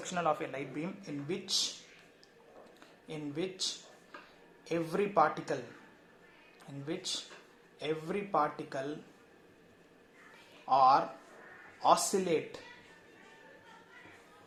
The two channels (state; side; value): identical; both; correlation 1.00